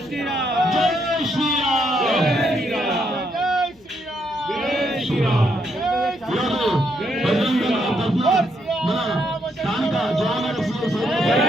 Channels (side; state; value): left; noise; hum, 29 dB below the sound